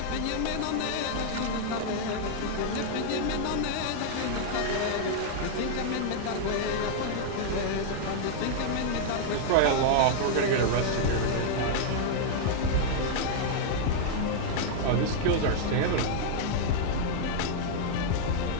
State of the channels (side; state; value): both; different; correlation -0.01